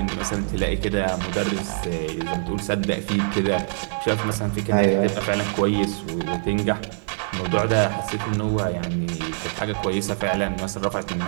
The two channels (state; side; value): silent; left; digital silence